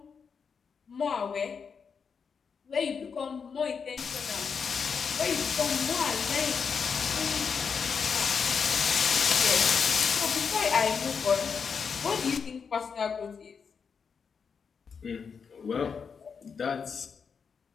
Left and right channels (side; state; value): right; quieter; 6.1 dB